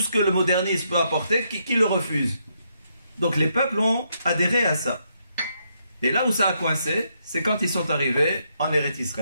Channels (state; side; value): inverted; both; correlation -0.77